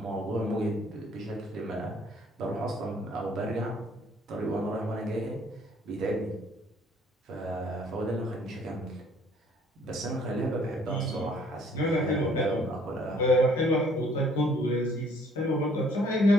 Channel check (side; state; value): both; normal; correlation 0.60